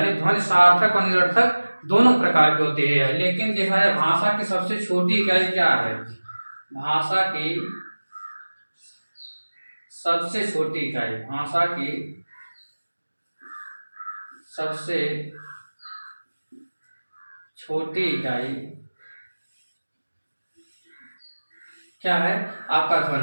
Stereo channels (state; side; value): inverted; both; correlation -1.00